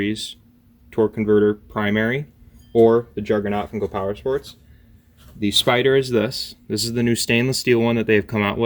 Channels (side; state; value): both; identical; correlation 1.00